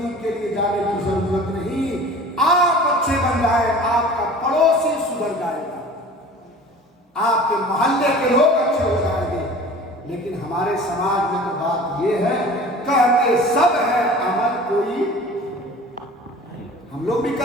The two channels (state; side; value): normal; both; correlation 0.42